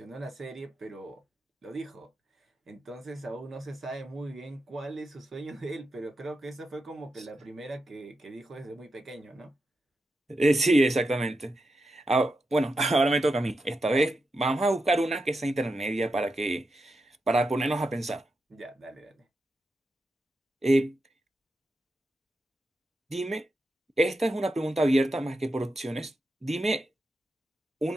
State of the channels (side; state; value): both; normal; correlation 0.87